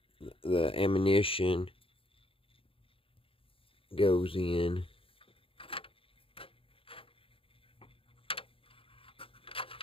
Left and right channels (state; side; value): late; right; 0.26 ms